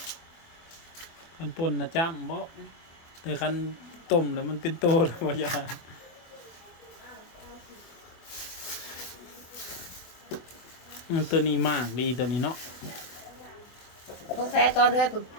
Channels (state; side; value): late; right; 24 ms